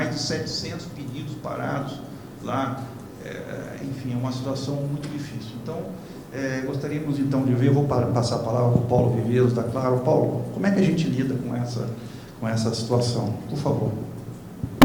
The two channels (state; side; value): identical; both; correlation 1.00